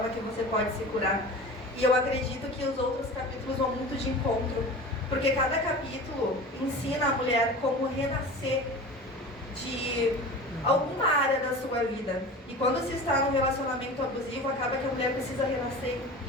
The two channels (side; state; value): both; normal; correlation 0.35